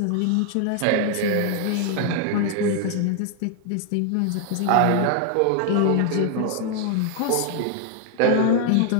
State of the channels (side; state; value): both; different; correlation 0.00